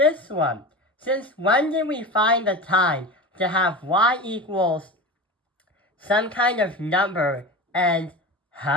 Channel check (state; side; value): normal; both; correlation 0.28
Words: one? Since when did we find the time to have y equals some kind of number and,